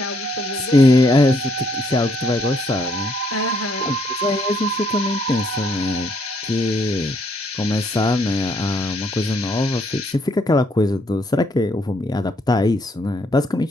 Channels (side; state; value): both; normal; correlation 0.70